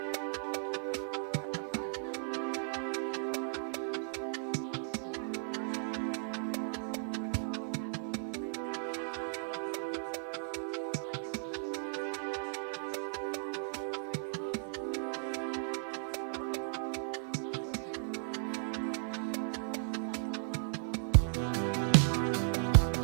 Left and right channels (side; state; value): left; silent; 54 dB below the other